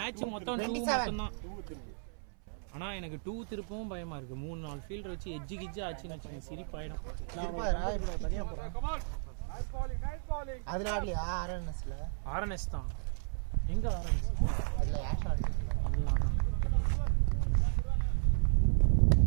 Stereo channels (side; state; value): left; silent; 55 dB below the other